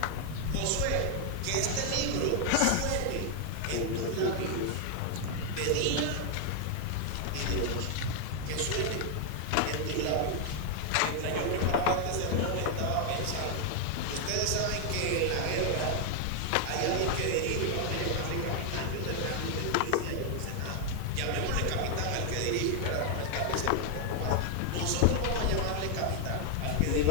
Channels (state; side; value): different; both; correlation 0.00